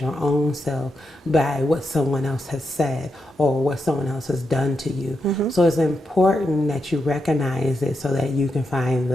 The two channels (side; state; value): both; normal; correlation 0.85